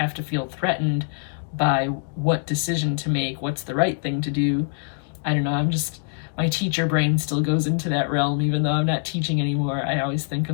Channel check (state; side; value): silent; right; digital silence